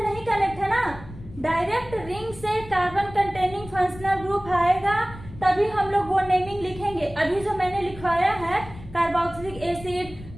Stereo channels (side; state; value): left; noise; rumble, 16 dB below the sound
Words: नहीं कनेक्ट है ना। डायरेक्ट रिंग से कार्बन कंटेनिंग फंक्शनल ग्रुप आएगा तभी हम लोग वो नेमिंग लिखेंगे। अभी जो मैंने लिखवाया है कार्बोक्सिलिक एसिड